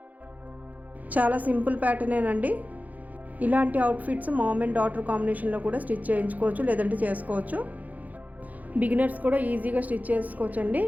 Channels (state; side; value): late; left; 0.079 ms